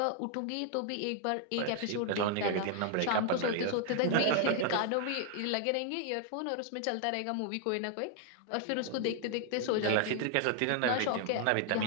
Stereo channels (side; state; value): both; different; correlation 0.00